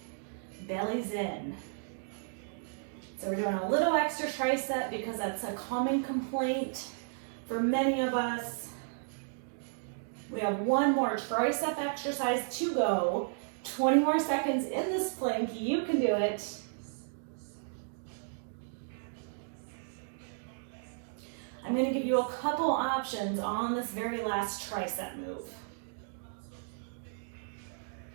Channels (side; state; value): left; silent; digital silence